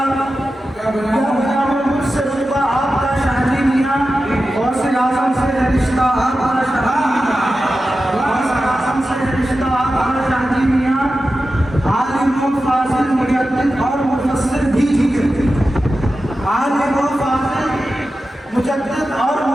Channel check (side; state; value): both; normal; correlation 0.92